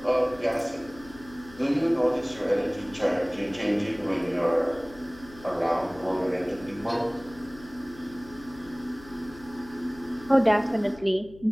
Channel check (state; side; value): noise; left; hum, 20 dB below the sound